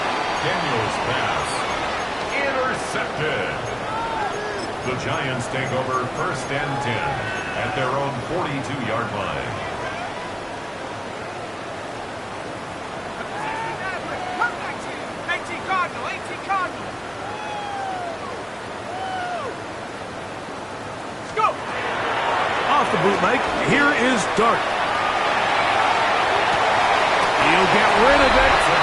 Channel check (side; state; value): both; identical; correlation 1.00